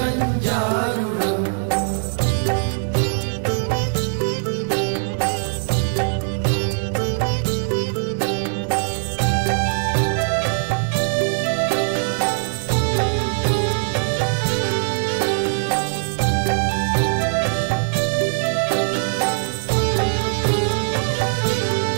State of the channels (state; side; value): silent; left; digital silence